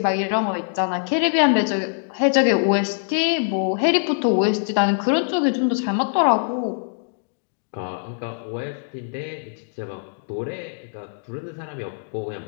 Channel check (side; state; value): right; silent; digital silence